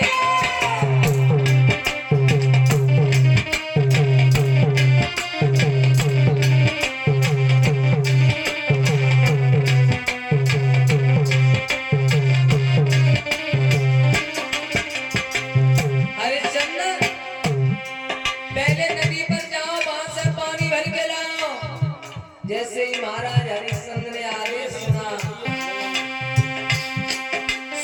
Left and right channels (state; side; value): identical; both; correlation 1.00